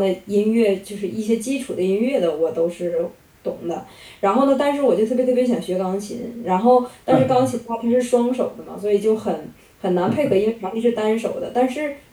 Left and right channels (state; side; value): identical; both; correlation 1.00